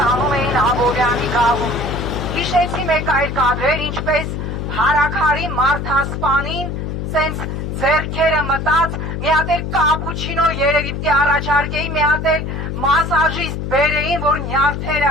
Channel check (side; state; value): left; noise; hum, 4 dB below the sound